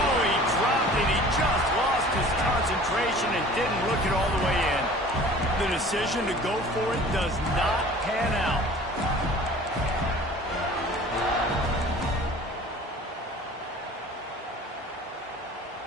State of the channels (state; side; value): normal; both; correlation 0.46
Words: he dropped it. He just lost his concentration and didn't look it all the way in. The decision to go for it does not pan out.